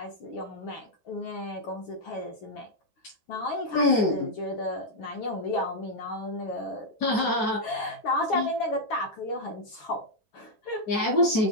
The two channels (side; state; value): right; late; 8.2 ms